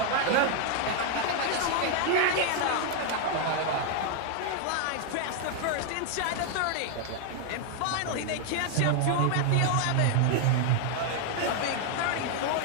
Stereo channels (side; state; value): both; different; correlation 0.00